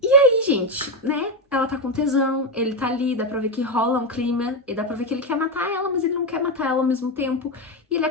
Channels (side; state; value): both; normal; correlation 0.10